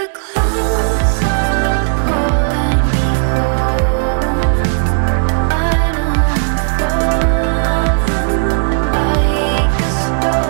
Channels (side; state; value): left; silent; digital silence